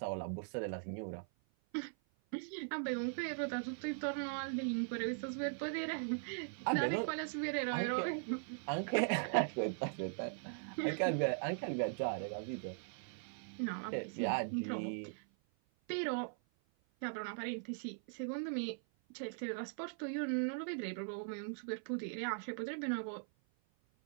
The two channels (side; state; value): left; silent; 51 dB below the other